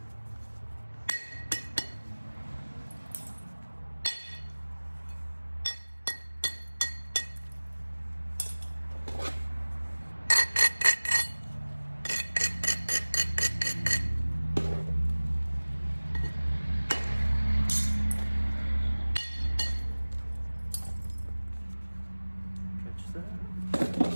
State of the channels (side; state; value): both; inverted; correlation -1.00